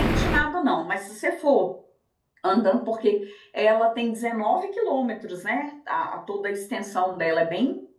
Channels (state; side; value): identical; both; correlation 1.00